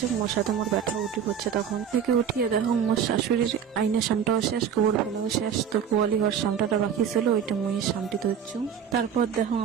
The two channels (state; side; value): quieter; left; 8.0 dB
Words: মোর সাথে মোর ব্যথা উঠি পড়ছে। তখন থেকে উঠিয়ে দেখো মোর শাশুড়ির আইনের সামটাও শেষ, গোবর ফেলাও শেষ। তো গোয়ালি ঘর সামটাটা বাকি ছিল, ওইটা মুই সামটি ধরছু। তারপর দেখো